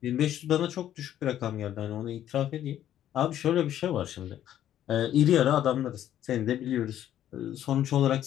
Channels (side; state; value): right; quieter; 11.4 dB